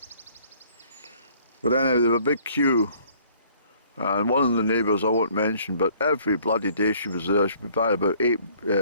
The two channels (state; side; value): inverted; both; correlation -0.58